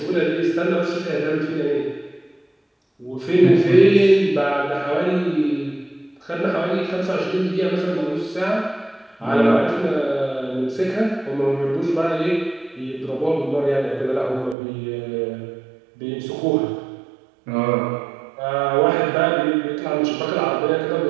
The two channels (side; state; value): left; drops out; at 14.6 s